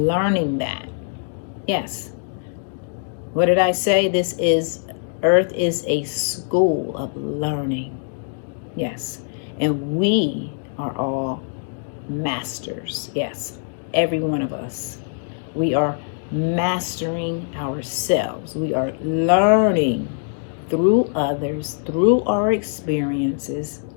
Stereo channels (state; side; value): silent; right; digital silence